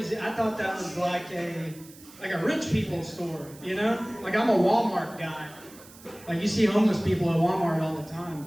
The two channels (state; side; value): noise; right; hiss, 21 dB below the sound